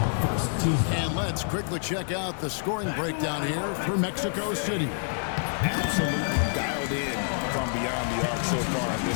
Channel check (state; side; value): silent; right; digital silence